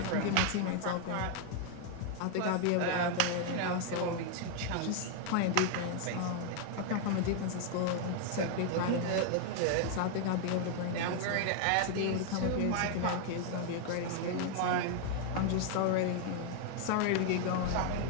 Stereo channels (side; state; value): both; different; correlation 0.00